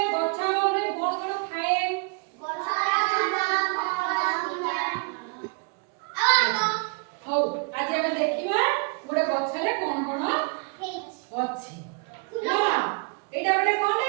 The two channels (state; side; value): quieter; left; 34.3 dB